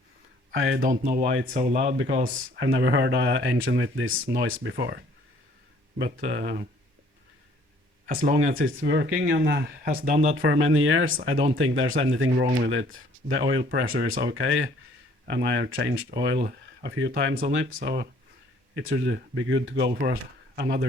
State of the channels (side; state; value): left; late; 1.1 ms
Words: I don't know why it's so loud because I've never heard an engine with this noise before. But as long as it's working and has done that for many years, I don't think there's anything wrong with it. The oil pressure is okay, and I have changed oil a few times on it, so it should be good to go for